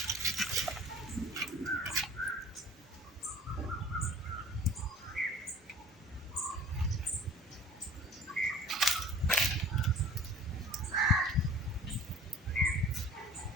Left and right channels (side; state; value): both; normal; correlation 0.45